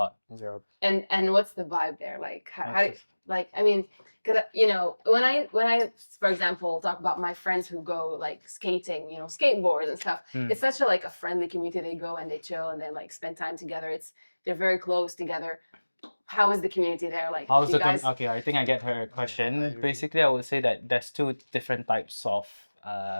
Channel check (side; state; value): both; inverted; correlation -1.00